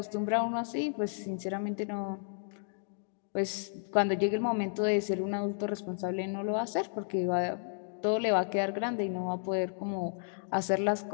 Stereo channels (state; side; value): silent; right; digital silence